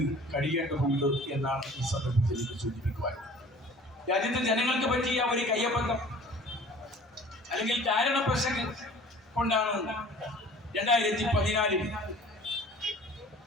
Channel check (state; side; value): normal; both; correlation 0.47